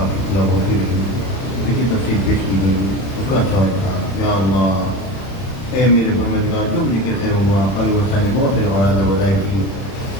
پورا ہوتی رہی اس کی تفصیل پیش کی گئی اس کا اچھا ہوتا یا اللہ اے میرے پروردگار جو مجھے کے خیر ہوا قاری ورسا نے بہت سارے مراد وظائف کی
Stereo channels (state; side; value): late; right; 31 ms